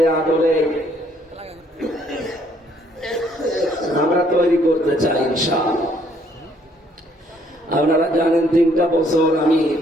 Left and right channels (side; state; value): both; normal; correlation 0.65